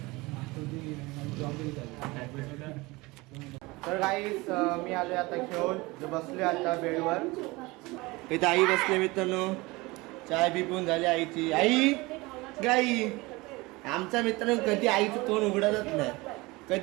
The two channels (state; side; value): quieter; left; 22.8 dB